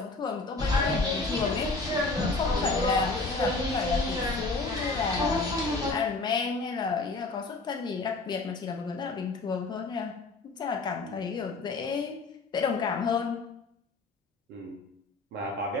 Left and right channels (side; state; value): right; quieter; 3.5 dB